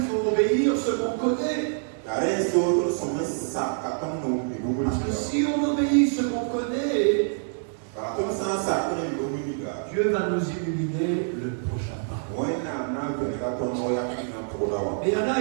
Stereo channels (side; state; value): left; silent; digital silence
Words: faut obéir ce qu'on connaît. Parce que si on obéit ce qu'on connaît, Dieu va nous illuminer le prochain pas. Mais il y en a,